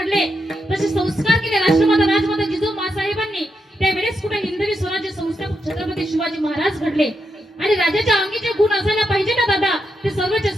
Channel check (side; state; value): both; normal; correlation 0.83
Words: तसे संस्कार केले राष्ट्रमाता राजमाता जिजाऊ मासाहेबांनी. त्यावेळेस कुठे हिंदवी स्वराज्य संस्थापक छत्रपती शिवाजी महाराज घडले. आणि राजाच्या अंगी जे गुण असायला पाहिजे ना दादा, ते सर्वचे